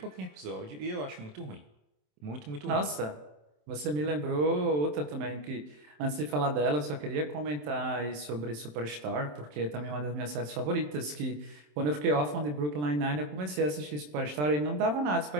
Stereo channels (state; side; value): late; left; 27 ms